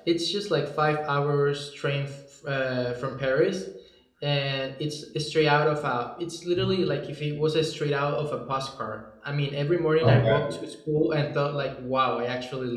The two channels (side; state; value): both; identical; correlation 1.00